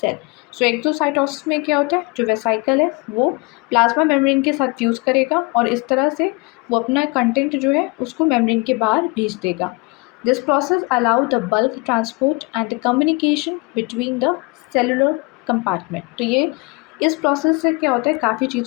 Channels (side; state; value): right; quieter; 26.8 dB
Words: So exocytosis में क्या होता है, जो वेसाइकल है वो प्लाज्मा मेम्ब्रेन के साथ फ्यूज़ करेगा और इस तरह से वो अपना कंटेंट जो है उसको मेम्ब्रेन के बाहर भेज देगा. This process allow the bulk transport and the communication between the cellular compartment. तो ये इस प्रोसेस से क्या होता है, काफ़ी